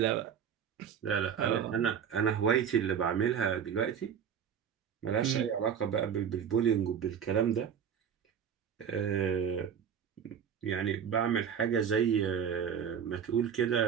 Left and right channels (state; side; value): quieter; left; 7.9 dB